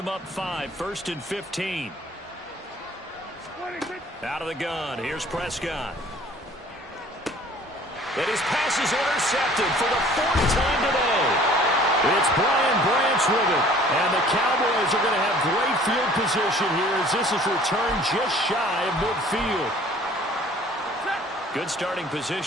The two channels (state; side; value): normal; both; correlation 0.52